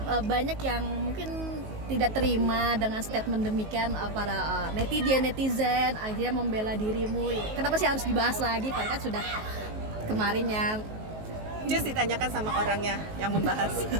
banyak yang mungkin tidak terima dengan statement demikian, para netizen akhirnya membela dirimu. Kenapa sih harus dibahas lagi? Padahal kan sudah kemarin ya. Just ditanyakan sama orangnya yang membahas,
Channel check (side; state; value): left; late; 19 ms